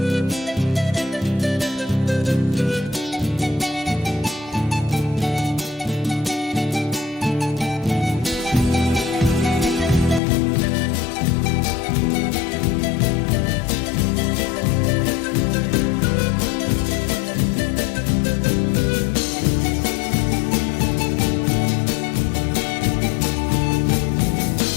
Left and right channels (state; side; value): drops out; right; at 10.2 s